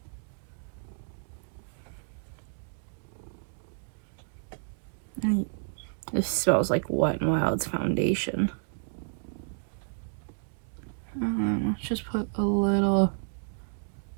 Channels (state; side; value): silent; left; digital silence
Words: This smells like Wet n Wild's foundation. Let's just put a little